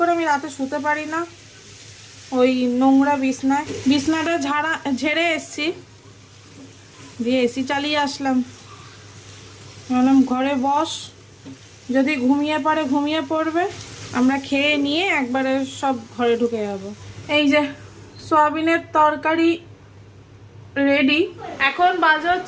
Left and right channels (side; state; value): both; identical; correlation 1.00